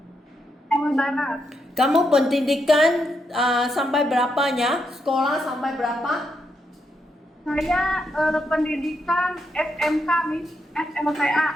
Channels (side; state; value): both; normal; correlation 0.81